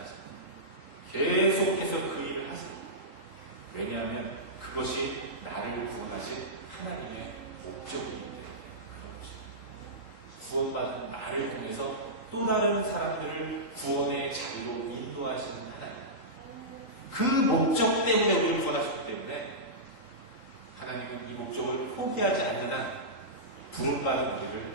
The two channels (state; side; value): late; right; 3.9 ms